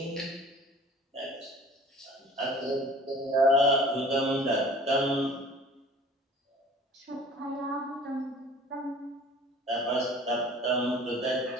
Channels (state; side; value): normal; both; correlation 0.47